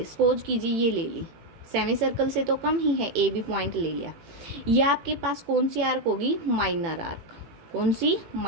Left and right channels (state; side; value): late; left; 18 ms